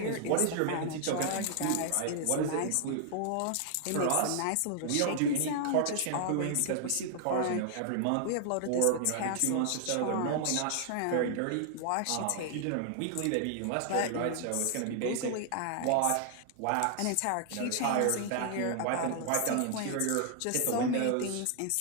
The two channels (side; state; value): both; different; correlation 0.00